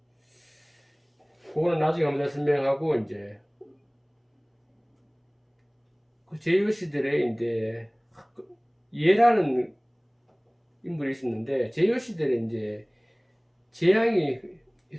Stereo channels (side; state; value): both; identical; correlation 1.00